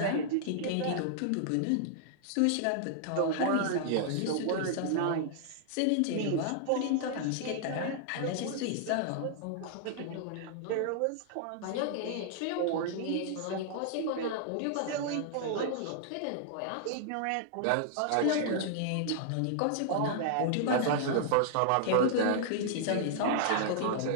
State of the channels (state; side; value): different; both; correlation -0.01